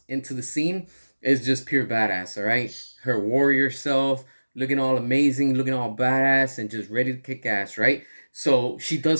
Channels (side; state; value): both; inverted; correlation -1.00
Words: into the scene, it's just pure badass. All right, her warrior self looking all amazing, looking all badass, and just ready to kick ass. Right. So she